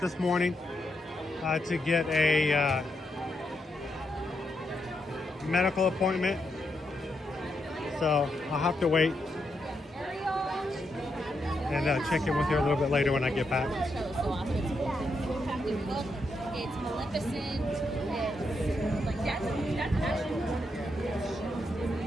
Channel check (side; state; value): both; normal; correlation 0.81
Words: this morning to get a medical appointment. So I'll have to wait and check in with her a little bit later when I get back. It's Maleficent. It's like that's